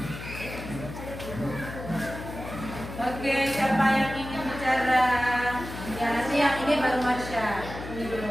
Oke, siapa yang ingin bicara? Ya, nanti yang ini baru Marsha. Ini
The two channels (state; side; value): noise; left; hum, 10 dB below the sound